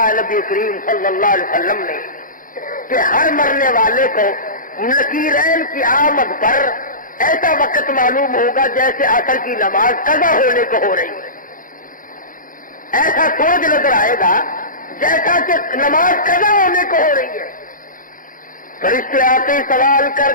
نبی کریم صلی اللہ علیہ وسلم نے کہ ہر مرنے والے کو نکیرین کی آمد پر ایسا وقت معلوم ہوگا جیسے عصر کی نماز قضا ہونے کو ہو رہی ہے. ایسا سورج نظر آئے گا جیسا کہ نماز قضا ہونے کو ہو رہی ہے. فرشتے آتے ہی سوال کر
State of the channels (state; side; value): late; right; 0.39 ms